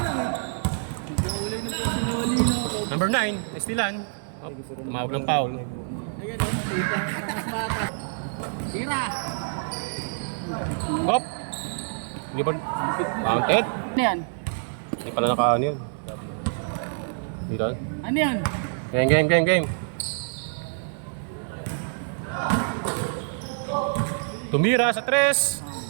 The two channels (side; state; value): left; silent; digital silence